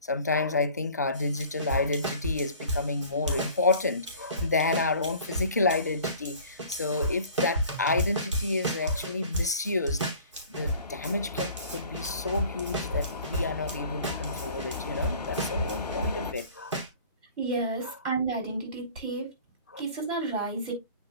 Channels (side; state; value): both; inverted; correlation -0.48